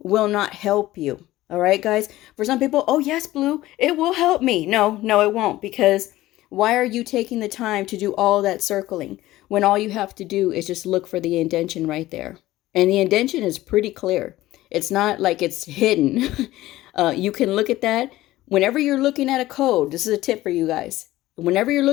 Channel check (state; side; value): quieter; right; 16.4 dB